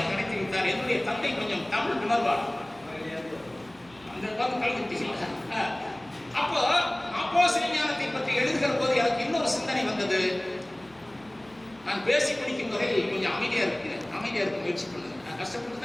நடத்தி வைத்தார். என்னுடைய தந்தை கொஞ்சம் தமிழ் உணர்வார். அந்த கல்வி அப்போ அப்போ சிவஞானத்தை பற்றி எழுதுகிற போது எனக்கு இன்னொரு சிந்தனை வந்தது. நான் பேசி பிடிக்கும் வரை கொஞ்சம் அமைதியா இருக்க முயற்சி பண்ணுங்க. நான் கஷ்டப்பட்டு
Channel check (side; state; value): left; noise; hum, 28 dB below the sound